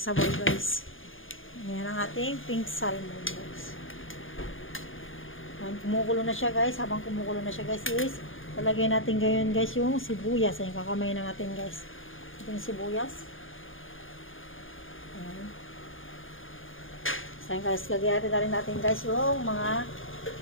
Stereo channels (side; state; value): right; late; 0.59 ms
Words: sabaw guys. Ayan ang ating pink salmon guys. Kumukulo na siya guys. Habang kumukulo na siya guys is lalagay natin ngayon guys yung sibuyas. Ayan, kakamay na natin guys yung sibuyas. Ayan. So guys, lagyan natin guys yung mga